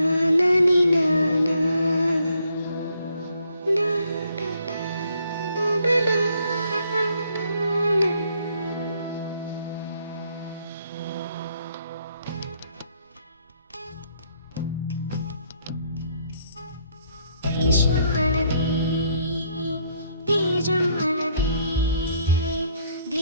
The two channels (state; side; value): inverted; both; correlation -0.69